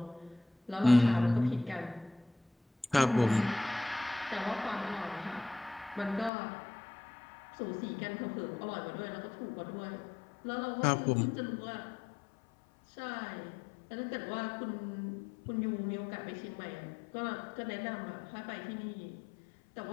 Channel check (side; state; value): right; drops out; at 6.3 s